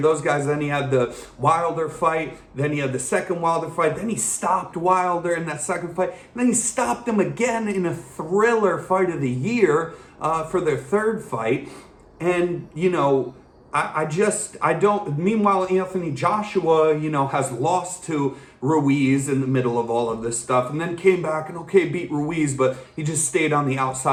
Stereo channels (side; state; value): both; identical; correlation 1.00